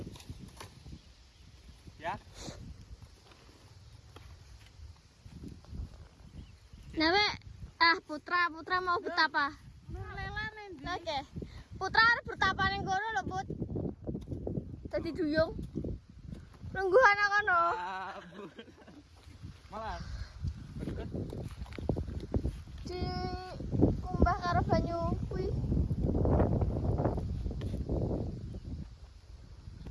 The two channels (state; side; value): identical; both; correlation 1.00